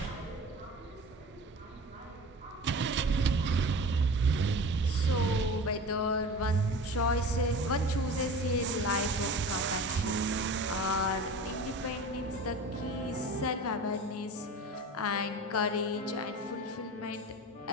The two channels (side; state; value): both; normal; correlation 0.35